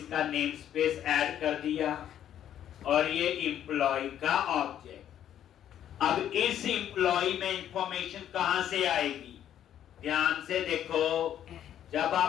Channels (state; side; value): quieter; right; 10.6 dB